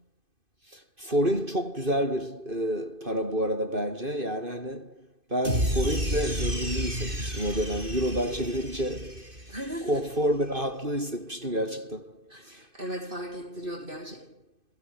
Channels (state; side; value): late; left; 2.5 ms